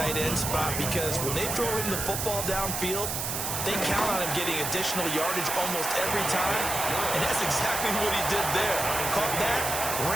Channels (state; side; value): noise; right; hiss, 2 dB below the sound